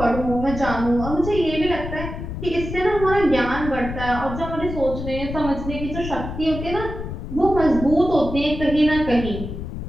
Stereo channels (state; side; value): noise; left; rumble, 7 dB below the sound